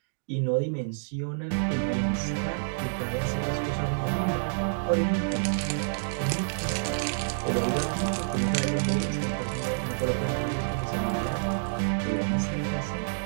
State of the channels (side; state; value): left; silent; digital silence